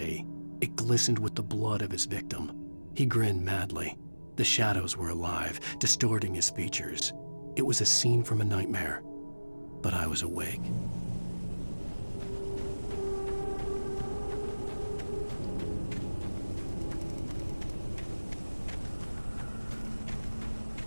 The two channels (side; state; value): both; inverted; correlation -1.00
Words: It glistened with the blood of his victim. He grinned madly. The shadows were alive, distorting his features. It was a scene from a nightmare, but I was awake.